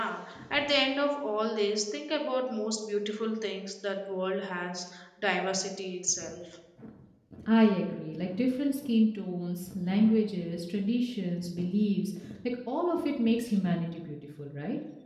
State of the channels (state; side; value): identical; both; correlation 1.00